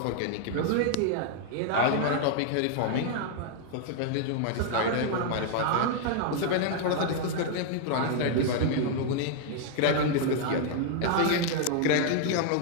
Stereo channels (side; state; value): both; different; correlation 0.00